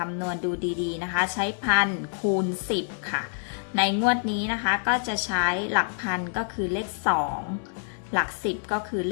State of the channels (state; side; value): silent; right; 58 dB below the other